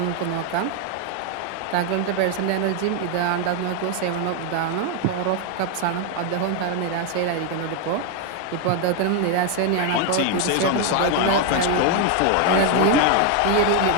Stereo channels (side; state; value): both; different; correlation 0.01